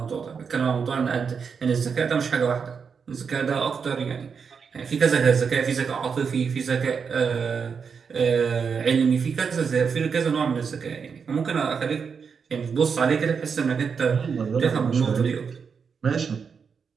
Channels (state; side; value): quieter; left; 6.1 dB